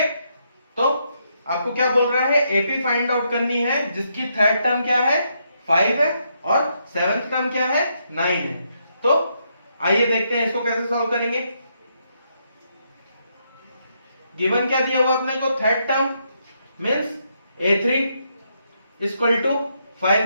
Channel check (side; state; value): both; inverted; correlation -0.77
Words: तो आपको क्या बोल रहा है, एपी फाइंड आउट करनी है जिसकी थर्ड टर्म क्या है 5 है और सेवेंथ टर्म क्या है 9 है। तो आइए देखते हैं इसको कैसे सॉल्व करेंगे। गिवन क्या दिया हुआ अपने को, third term means A3 equal to